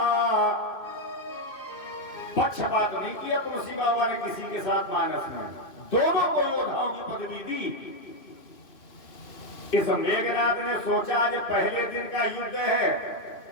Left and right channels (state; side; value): late; right; 2.5 ms